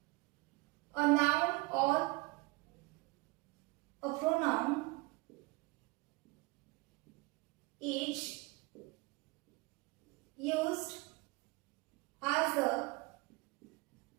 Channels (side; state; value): left; quieter; 25.2 dB